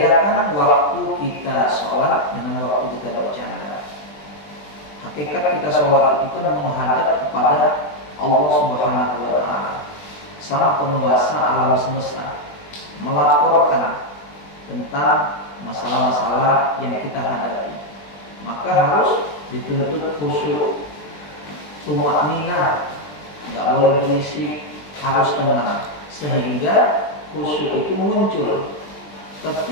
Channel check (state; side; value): late; right; 20 ms